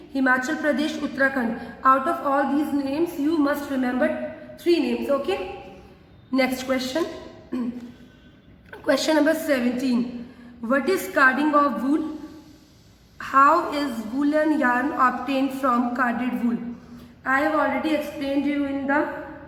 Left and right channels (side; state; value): both; identical; correlation 1.00